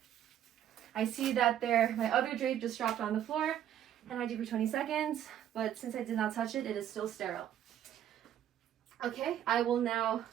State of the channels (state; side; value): quieter; left; 10.8 dB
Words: I see that my other drape just dropped on the floor, and I do for 20 seconds, but since I did not touch it, it is still sterile. Okay, I will now